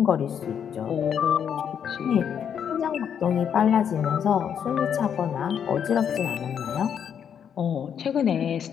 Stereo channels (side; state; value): right; quieter; 8.2 dB